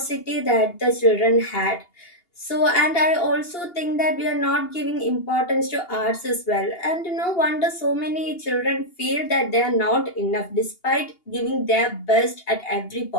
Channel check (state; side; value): late; right; 2.8 ms